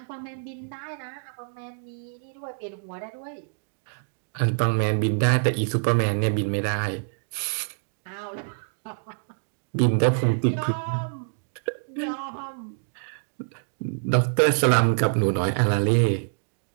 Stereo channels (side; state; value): left; silent; digital silence